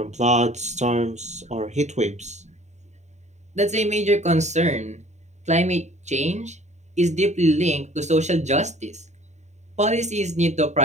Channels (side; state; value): left; late; 0.34 ms